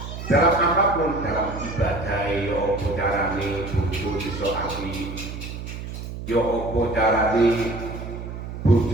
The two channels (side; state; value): right; noise; hum, 8 dB below the sound